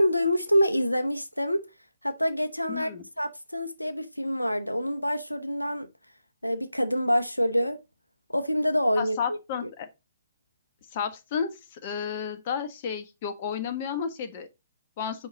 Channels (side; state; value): both; inverted; correlation -0.86